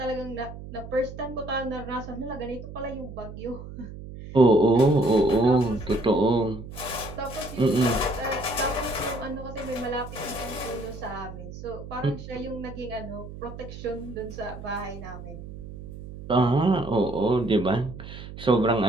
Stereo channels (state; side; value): noise; right; hum, 12 dB below the sound